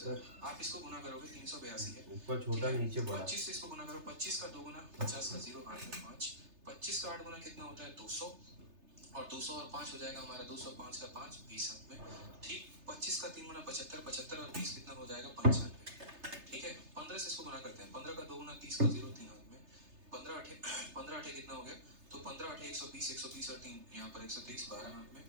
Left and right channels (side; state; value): left; late; 3.3 ms